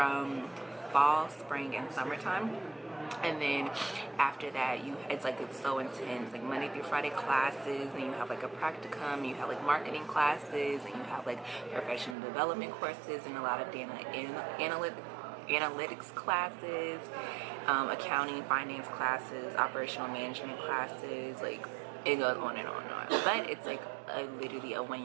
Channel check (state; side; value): drops out; left; at 12.2 s